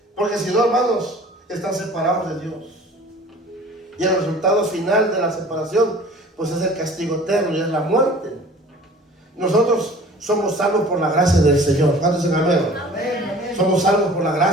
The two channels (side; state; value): both; normal; correlation 0.46